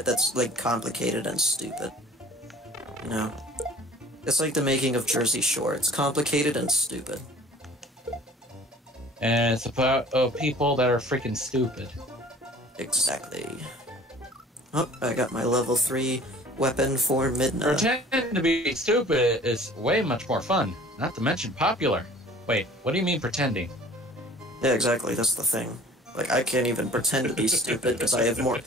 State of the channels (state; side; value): normal; both; correlation 0.49